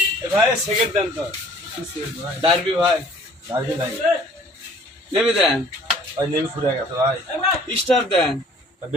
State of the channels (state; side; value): normal; both; correlation 0.53